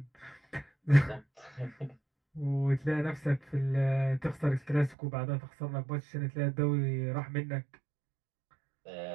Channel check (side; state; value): left; drops out; at 5.0 s